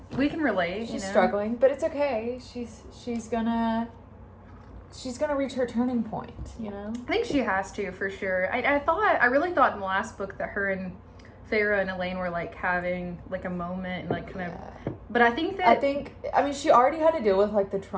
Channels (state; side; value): identical; both; correlation 1.00